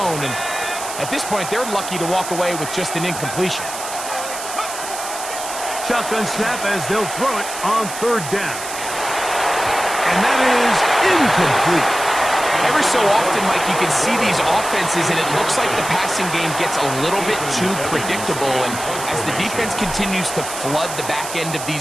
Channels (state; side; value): noise; right; hiss, 8 dB below the sound